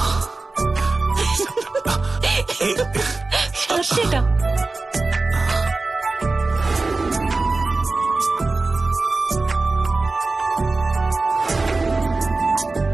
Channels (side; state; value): left; quieter; 3.5 dB